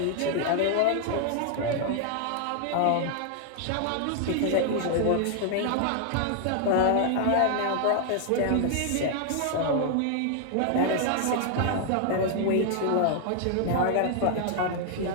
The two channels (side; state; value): both; different; correlation 0.00